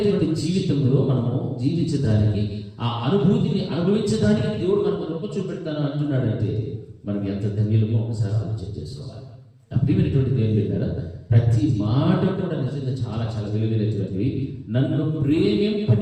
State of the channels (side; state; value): both; identical; correlation 1.00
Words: జీవితంలో మనము జీవించడానికి, ఆ అనుభూతిని అనుభవించడానికి దేవుడు మనకు రొప్ప చూపెడతాను అంటున్నాడంటే మనం ఎంత ధన్యులమో ఒకసారి ఆలోచన చేసుకోవాలి. అప్రియమైనటువంటి దేవుని బిడ్డలారా, ప్రతి మాట కూడా నిజంగా చాలా చాలా విలువైనటువంటివి. నన్ను